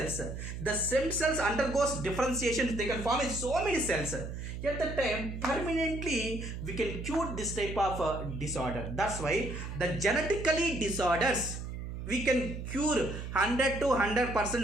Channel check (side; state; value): right; noise; hum, 7 dB below the sound